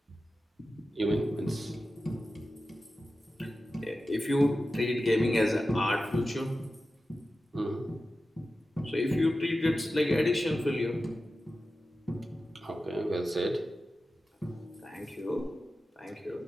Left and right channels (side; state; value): both; normal; correlation 0.93